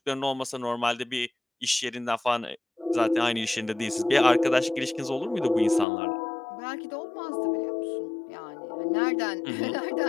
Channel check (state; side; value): drops out; right; at 5.9 s